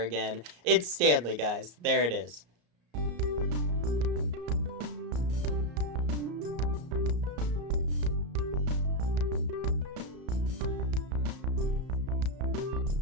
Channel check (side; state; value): left; late; 34 ms